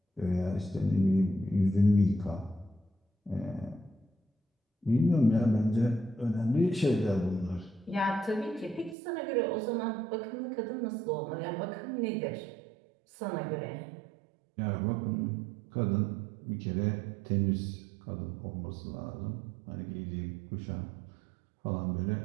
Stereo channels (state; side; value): drops out; left; at 9.0 s